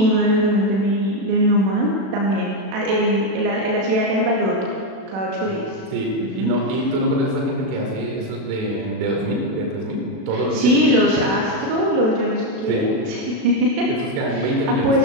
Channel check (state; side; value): late; left; 36 ms